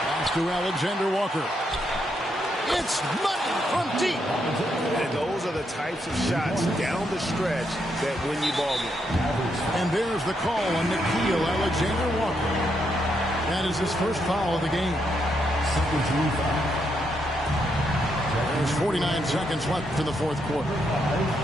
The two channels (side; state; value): both; normal; correlation 0.79